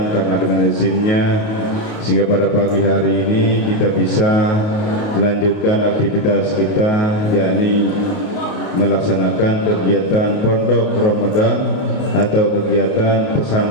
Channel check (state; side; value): late; right; 28 ms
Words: karena dengan izinnya sehingga pada pagi hari ini kita bisa melanjutkan aktivitas kita, yakni melaksanakan kegiatan Pondok Ramadan atau kegiatan